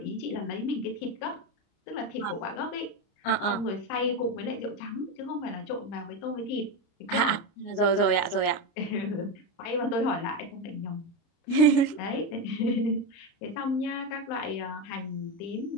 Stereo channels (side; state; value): right; late; 29 ms